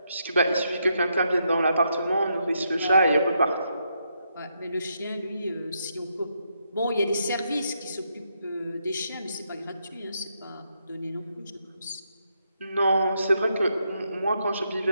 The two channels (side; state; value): both; inverted; correlation -0.79